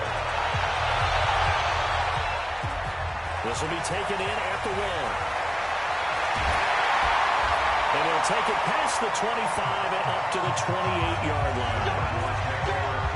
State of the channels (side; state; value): both; identical; correlation 1.00